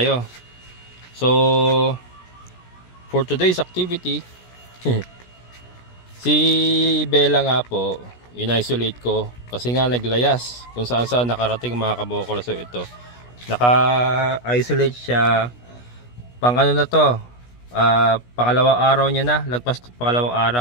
So for today's activity, si Bella nga po, in-isolate ko kasi nga naglayas kung saan saan nakarating mga kabokals. So ito, naka-isolate siya pang ano na to, pangalawang araw niya na, lagpas pangalawang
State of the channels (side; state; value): right; late; 16 ms